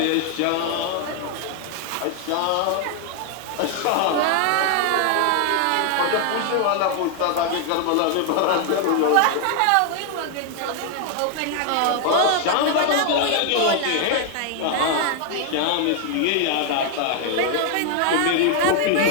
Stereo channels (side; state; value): both; different; correlation 0.00